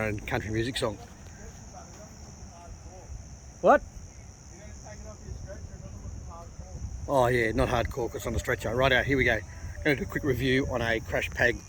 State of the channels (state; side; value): identical; both; correlation 1.00